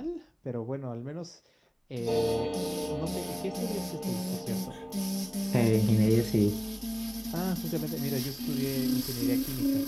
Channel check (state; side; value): identical; both; correlation 1.00